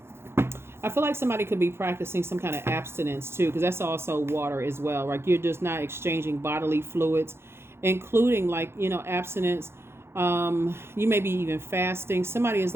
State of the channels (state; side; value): late; left; 0.12 ms